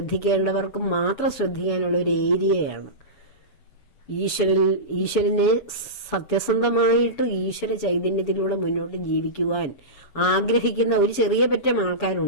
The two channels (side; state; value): right; late; 7.0 ms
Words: മാത്രം ശ്രദ്ധിക്കാനുള്ള ഒരു ഏരിയയാണ്. ഈശ്വരനെ സത്യസന്ധമായിട്ട് ഈശ്വര ചൈതന്യത്തിലൂടെ മുന്നോട്ട് ജീവിക്കുവാൻ ആഗ്രഹിക്കുന്ന ഒരു ചെറിയ പറ്റം